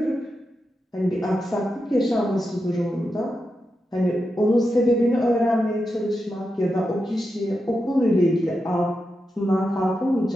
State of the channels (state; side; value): normal; both; correlation 0.88